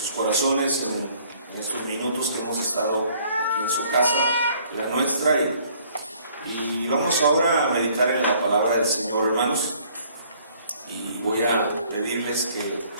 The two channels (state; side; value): inverted; both; correlation -0.60